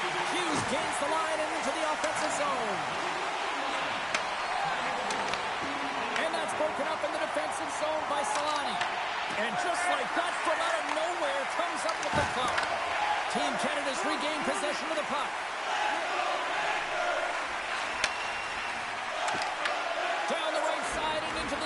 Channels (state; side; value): identical; both; correlation 1.00